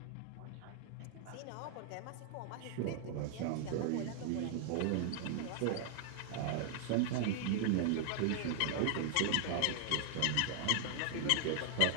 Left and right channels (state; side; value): different; both; correlation 0.00